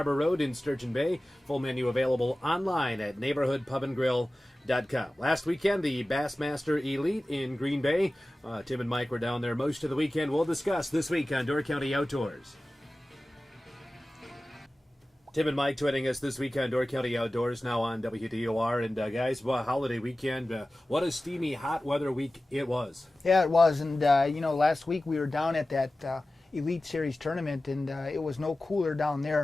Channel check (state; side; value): normal; both; correlation 0.96